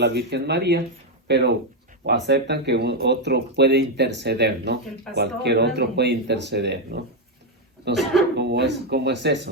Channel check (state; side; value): normal; both; correlation 0.04